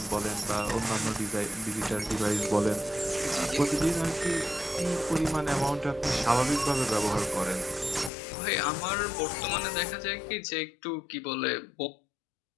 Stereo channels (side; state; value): right; drops out; at 8.1 s